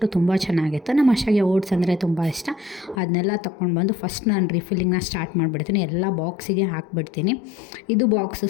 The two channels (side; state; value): right; drops out; at 3.0 s